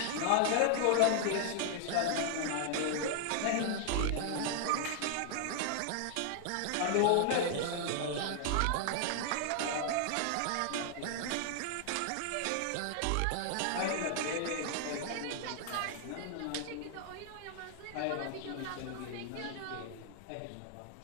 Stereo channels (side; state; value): both; different; correlation 0.00